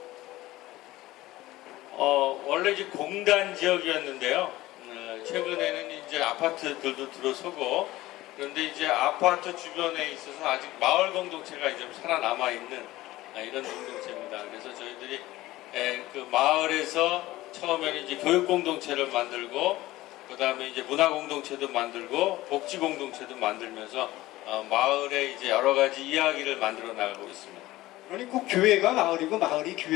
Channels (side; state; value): right; quieter; 17.3 dB